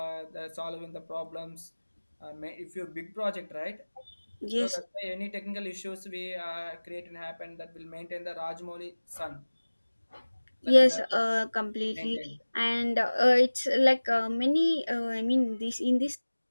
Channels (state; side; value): inverted; both; correlation -1.00